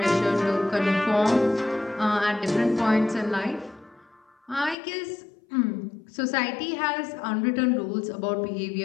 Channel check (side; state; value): right; drops out; at 4.8 s